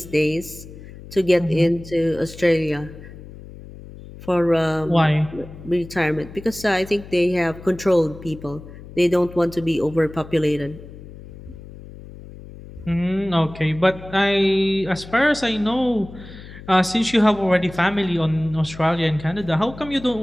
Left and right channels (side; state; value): left; noise; hum, 16 dB below the sound